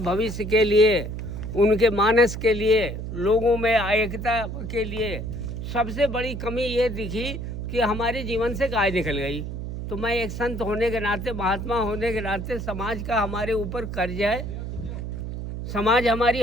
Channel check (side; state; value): right; noise; hum, 6 dB below the sound